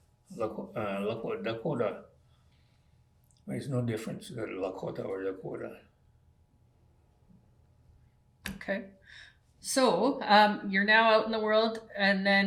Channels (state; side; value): identical; both; correlation 1.00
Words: Dakota. There's no difference, Lakota or Dakota. Okay. So you're now out in the world, and